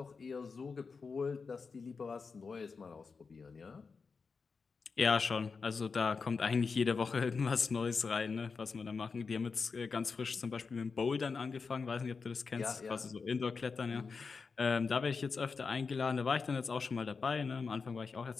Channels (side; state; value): right; quieter; 4.9 dB